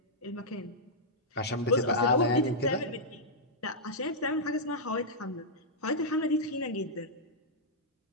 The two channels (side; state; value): both; normal; correlation -0.09